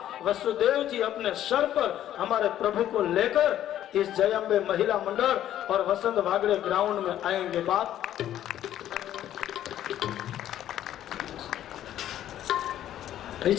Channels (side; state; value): right; quieter; 11.8 dB